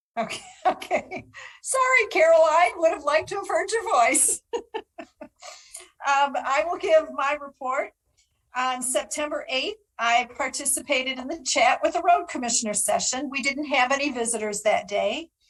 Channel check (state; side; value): identical; both; correlation 1.00